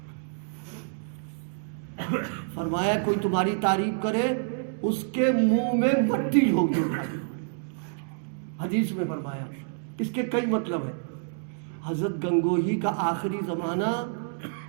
فرمایا کوئی تمہاری تعریف کرے اس کے منہ میں مٹی ہوگی. حدیث میں فرمایا اس کے کئی مطلب ہیں. حضرت گنگوہی کا آخری زمانہ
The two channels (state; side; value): silent; left; 59 dB below the other